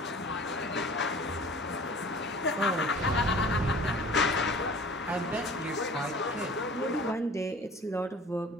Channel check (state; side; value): normal; both; correlation 0.45